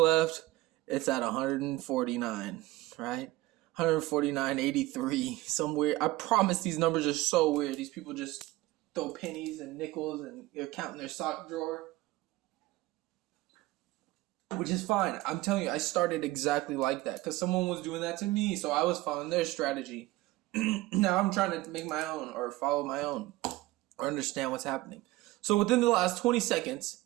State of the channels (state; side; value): quieter; left; 18.3 dB